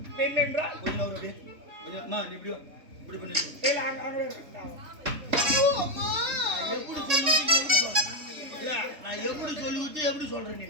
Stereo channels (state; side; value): late; left; 3.5 ms